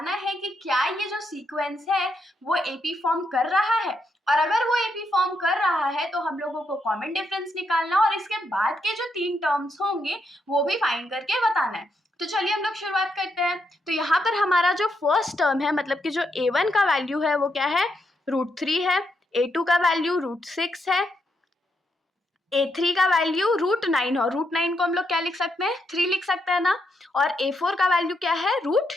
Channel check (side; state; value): both; normal; correlation 0.80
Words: है कि क्या ये जो सीक्वेंस है वो एपी फॉर्म कर रहा है, और अगर वो एपी फॉर्म कर रहा है तो हम लोगों को कॉमन डिफरेंस निकालना और इसके बाद के जो 3 टर्म्स होंगे वो भी फाइंड करके बताना है। तो चलिए हम लोग शुरुआत करते हैं। तो यहाँ पर हमारा जो फर्स्ट टर्म है, मतलब कि जो a1 का वैल्यू है वो क्या है, √3 है। a2 का वैल्यू √6 है। a3 का वैल्यू √9 और √9 को हम लोग क्या लिख सकते हैं, 3 लिख सकते हैं ना। और a4 का वैल्यू क्या है,